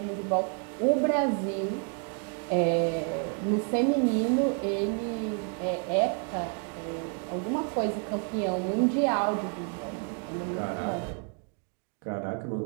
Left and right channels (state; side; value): quieter; left; 39.0 dB